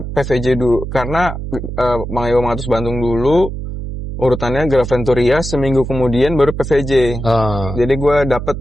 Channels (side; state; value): right; noise; hum, 7 dB below the sound